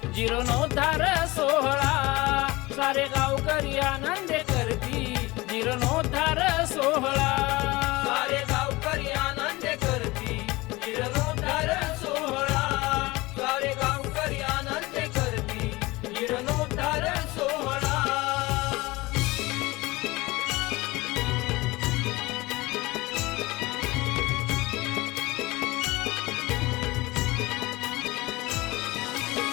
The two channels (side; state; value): right; quieter; 21.6 dB